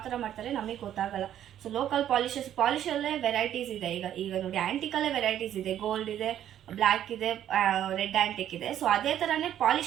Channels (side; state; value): left; quieter; 11.0 dB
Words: ತರ ಮಾಡ್ತಾರೆ ನಮಗೆ ಗೊತ್ತಾಗಲ್ಲ. ಸೊ ಲೋಕಲ್ ಪಾಲಿಶಲ್ಲೇ ವೆರೈಟೀಸ್ ಇದೆ. ಈಗ ನೋಡಿ, ಆಂಟಿಕಲ್ಲೇ ವೆರೈಟೀಸ್ ಇದೆ. ಗೋಲ್ಡ್ ಇದೆ, ಬ್ಲ್ಯಾಕ್ ಇದೆ, ರೆಡ್ ಆ್ಯಂಟಿಕ್ ಇದೆ. ಸೊ ಅದೇ ಥರನೇ